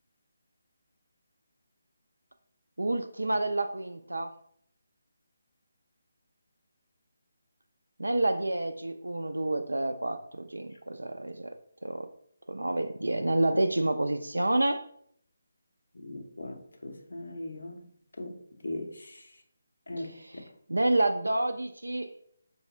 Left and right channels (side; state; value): both; inverted; correlation -0.97